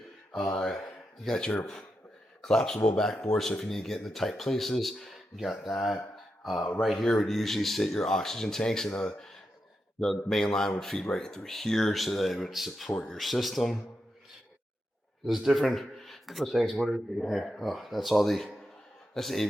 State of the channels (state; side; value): normal; both; correlation 0.87